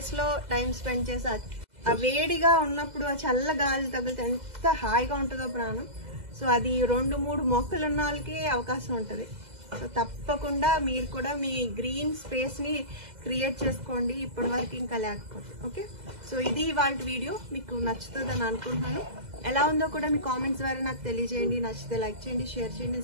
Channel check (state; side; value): late; left; 2.0 ms